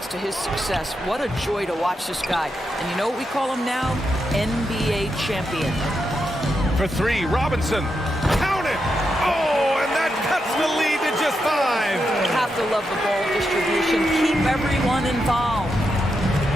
to his success. What a joy to watch this guy. And you know what we call him now? NBA champion. For 3, Robinson. Count it! Oh, and that cuts the lead to just 5. You have to love the ball distribution. Keep everyone involved.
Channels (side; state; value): both; normal; correlation 0.85